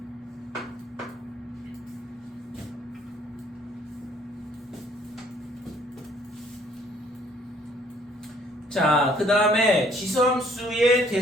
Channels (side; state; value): both; normal; correlation 0.61